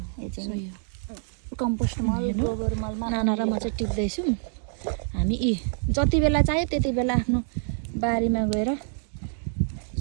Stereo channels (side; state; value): left; silent; 61 dB below the other